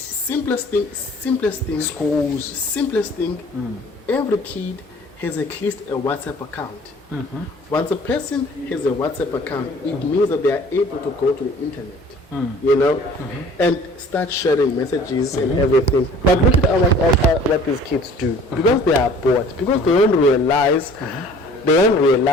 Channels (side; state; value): both; normal; correlation 0.50